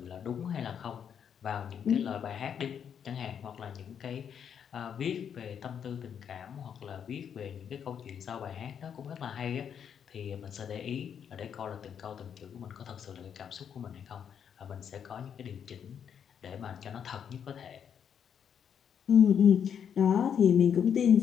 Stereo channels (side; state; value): right; quieter; 8.0 dB